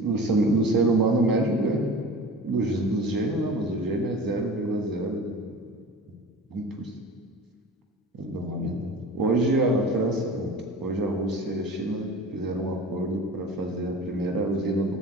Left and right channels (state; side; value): normal; both; correlation 0.37